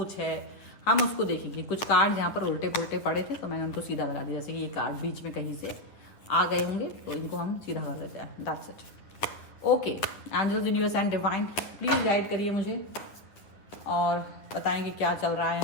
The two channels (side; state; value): right; late; 9.6 ms